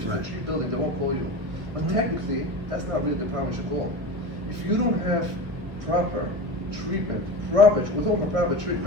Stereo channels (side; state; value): left; late; 1.6 ms